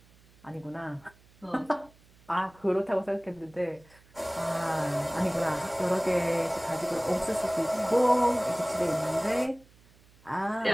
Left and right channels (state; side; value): noise; right; hum, 28 dB below the sound